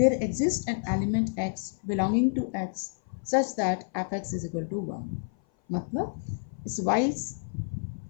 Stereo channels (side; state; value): right; silent; 56 dB below the other